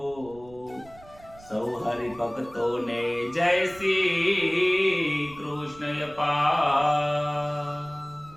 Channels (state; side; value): noise; right; rumble, 22 dB below the sound